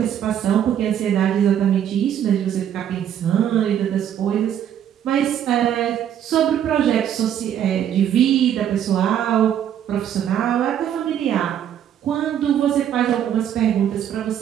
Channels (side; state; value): left; quieter; 9.9 dB